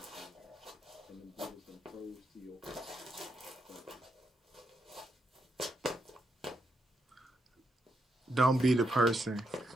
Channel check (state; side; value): normal; both; correlation 0.81